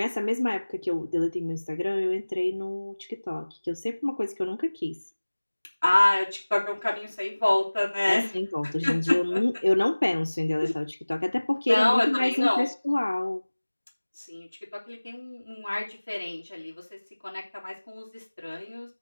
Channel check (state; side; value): inverted; both; correlation -1.00